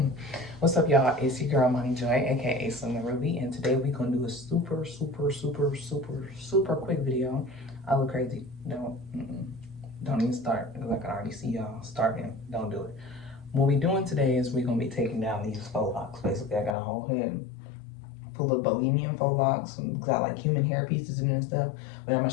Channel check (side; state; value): right; drops out; at 16.8 s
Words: What's up, y'all? It's your girl, Money Joy, aka Summer Ruby, and today we're gonna do a super quick video. I look crazy. Don't even start because I can already see y'all starting. Don't do it. What we doing today is we're gonna be taking down these faux locks. Basically, I got a whole head full of bohemian faux locks, got like human hair pieces in it and stuff. But I'm gonna